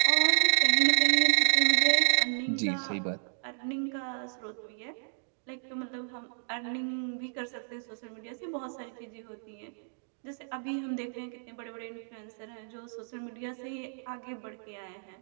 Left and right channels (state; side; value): silent; left; digital silence